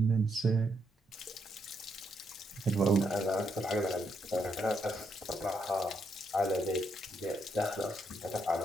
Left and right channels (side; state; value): both; normal; correlation 0.78